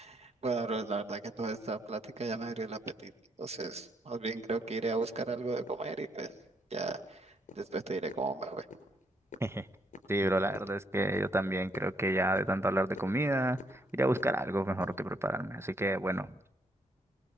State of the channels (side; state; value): both; normal; correlation 0.72